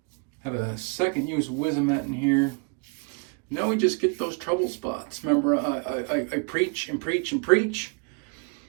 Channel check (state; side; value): quieter; left; 37.0 dB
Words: Have a second use Wizomet in here. Now we just get those trouble spots. Remember, I preach and preach and preach.